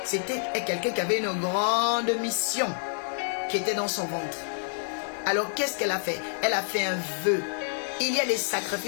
C'était quelqu'un qui avait une grande mission qui était dans son ventre. Alors qu'est-ce qu'elle a fait? Elle a fait un vœu. Il y a des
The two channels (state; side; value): silent; right; digital silence